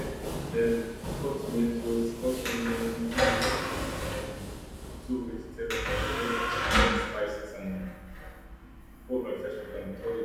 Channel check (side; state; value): both; identical; correlation 1.00